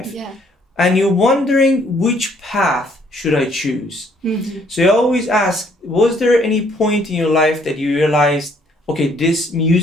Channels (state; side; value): normal; both; correlation 0.64